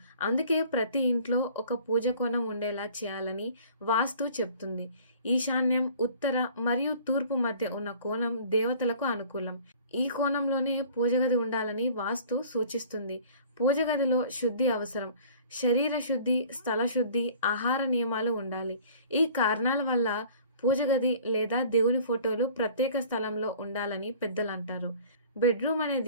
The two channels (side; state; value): both; inverted; correlation -0.49